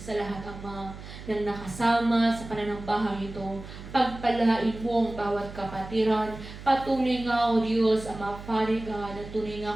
lahat, Ama, ng nakasama sa pananambahang ito. Pagpalain mo ang bawat kapatiran. Patuloy nga, O Diyos, Ama, Father God, at tunay nga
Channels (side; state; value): right; noise; hum, 13 dB below the sound